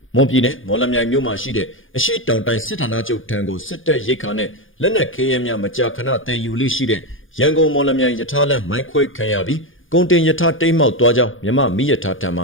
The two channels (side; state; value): right; late; 0.58 ms